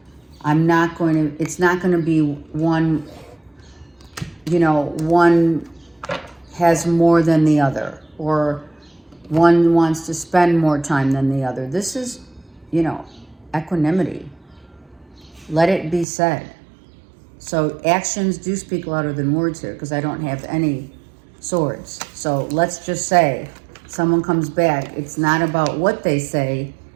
It's not going to be one, one has more than the other, or one wants to spend more time than the other. This is, equanimity. Let it be said. So actions do speak louder than words here, because I don't have any swords. So let's just say someone comes back. It's not about what they say.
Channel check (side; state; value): left; drops out; at 16.1 s